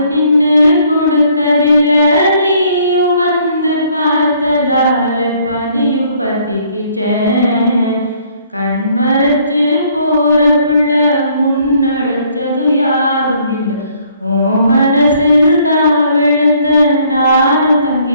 நின்னு கொடுத்ததில்ல. நீயும் வந்து பார்த்ததால பனியும் பத்திக்கிச்சேன். கண் மறைச்சு போற புள்ள முன்னடிச்சது யாரும் இல்லை. ஓ மனசில் தான் விழுந்த நானும்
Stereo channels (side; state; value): both; inverted; correlation -0.63